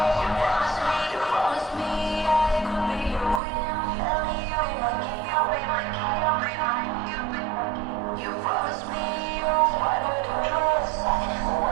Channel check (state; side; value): drops out; left; at 3.4 s